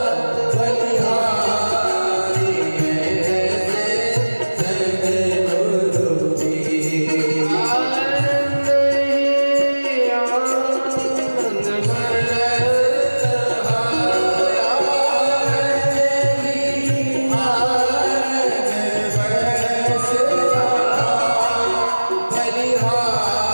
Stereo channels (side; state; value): both; inverted; correlation -1.00